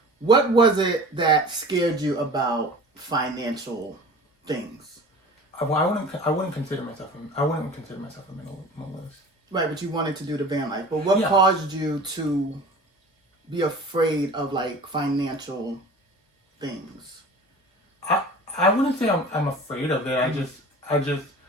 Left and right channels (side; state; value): both; normal; correlation 0.41